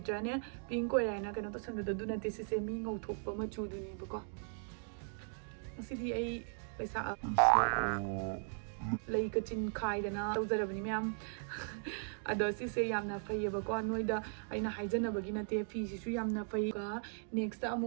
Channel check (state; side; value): silent; left; 53 dB below the other